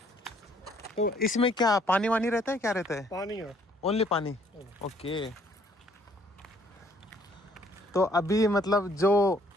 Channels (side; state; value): both; normal; correlation 0.63